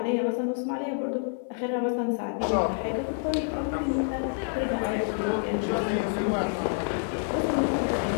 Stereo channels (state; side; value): silent; right; 59 dB below the other